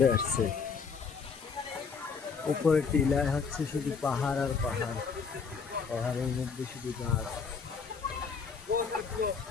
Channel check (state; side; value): quieter; right; 5.6 dB